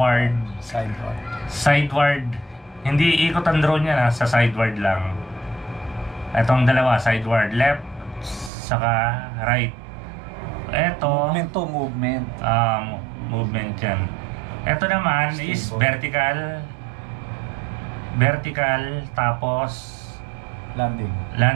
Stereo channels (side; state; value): left; drops out; at 8.5 s